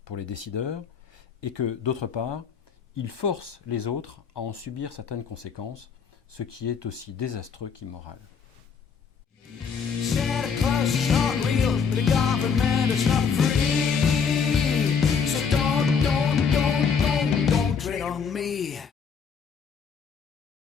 pour les décideurs, et que d'autre part, ils forcent les autres à en subir certaines conséquences, ce qui est aussi désastreux qu'immoral. Santa Claus is not real, but the government is not free. So don't tread on me.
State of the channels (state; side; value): quieter; right; 6.2 dB